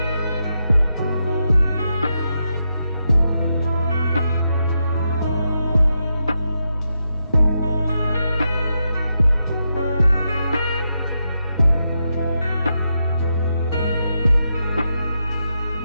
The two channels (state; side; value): inverted; both; correlation -0.85